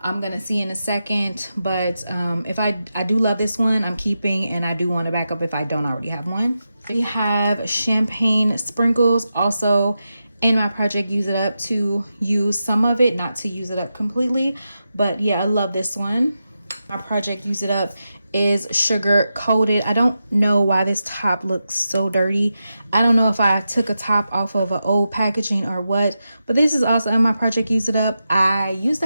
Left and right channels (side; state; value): both; inverted; correlation -0.89